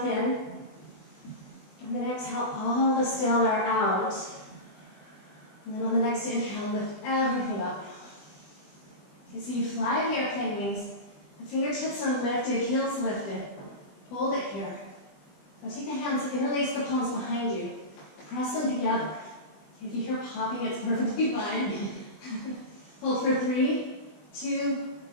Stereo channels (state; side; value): late; right; 20 ms